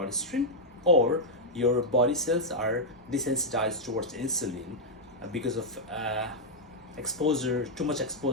or your body cells are desensitized towards insulin because of too much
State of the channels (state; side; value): normal; both; correlation -0.04